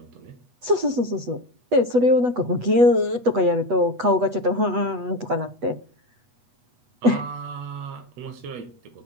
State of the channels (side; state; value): left; late; 8.1 ms